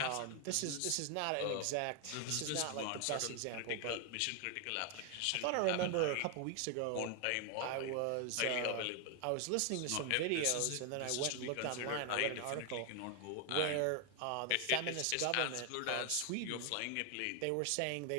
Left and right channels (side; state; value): both; different; correlation 0.01